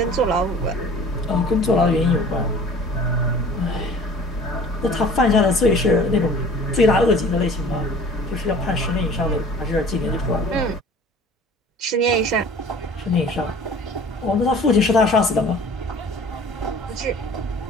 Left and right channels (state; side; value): normal; both; correlation 0.46